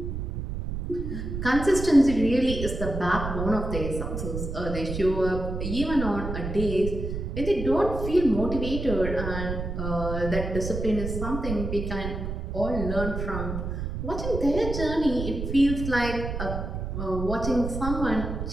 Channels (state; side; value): noise; right; rumble, 5 dB below the sound